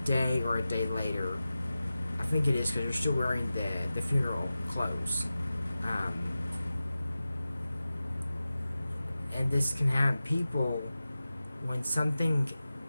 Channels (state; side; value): inverted; both; correlation -0.94